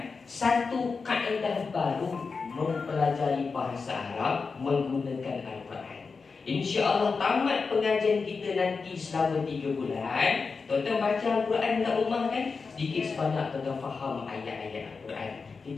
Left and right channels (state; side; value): quieter; right; 4.8 dB